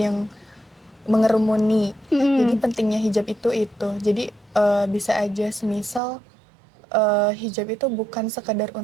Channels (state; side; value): drops out; left; at 6.0 s